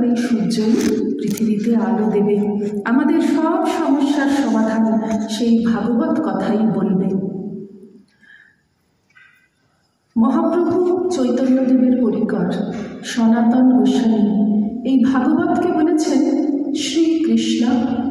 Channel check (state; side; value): identical; both; correlation 1.00